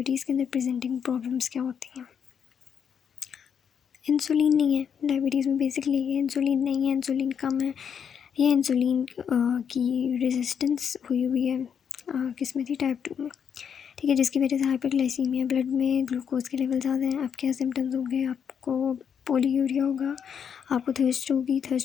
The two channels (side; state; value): right; quieter; 7.6 dB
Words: के अंदर प्रेजेंटिंग प्रॉब्लम्स क्या होती हैं? इंसुलिन नहीं है डायबिटीज़ में, बेसिकली ये इंसुलिन नहीं है, इंसुलिन कम है। ये इंसुलिन की रेजिस्टेंस हुई है किस में थी, टाइप 2 में, ठीक है। जिसकी वजह से हाइपरग्लाइसीमिया, ब्लड में ग्लूकोज के लेवल ज़्यादा हैं। अब क्या सिम्टम्स होंगे, आपको पोलीयूरिया होगा, आपको थर्स्ट होगी,